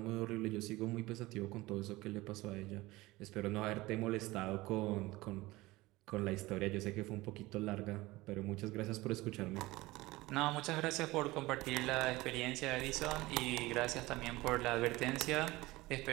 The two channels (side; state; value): left; quieter; 19.9 dB